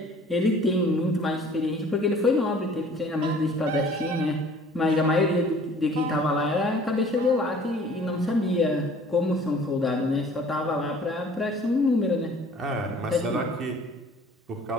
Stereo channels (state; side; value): normal; both; correlation 0.51